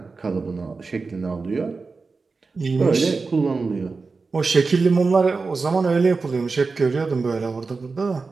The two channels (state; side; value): quieter; left; 4.3 dB